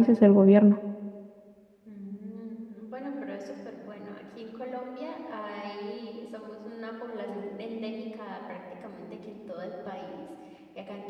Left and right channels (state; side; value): identical; both; correlation 1.00